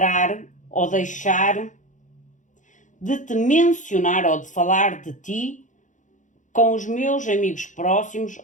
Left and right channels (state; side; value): late; right; 0.36 ms